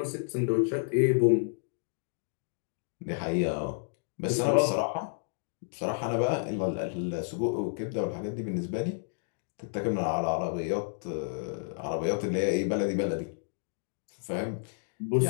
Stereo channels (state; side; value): silent; right; digital silence